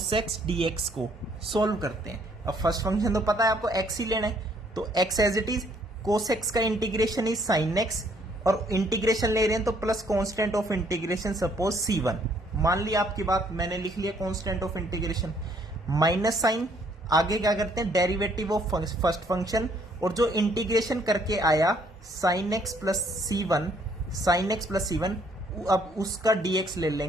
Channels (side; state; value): both; normal; correlation 0.65